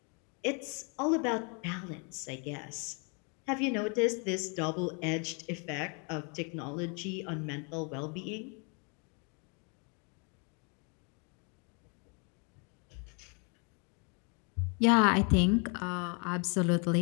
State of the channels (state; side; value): quieter; right; 35.5 dB